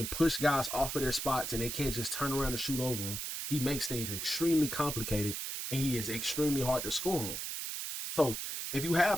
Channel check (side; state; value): right; noise; hiss, 4 dB below the sound